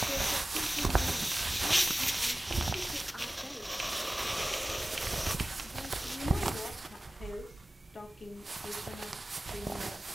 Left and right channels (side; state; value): both; normal; correlation 0.97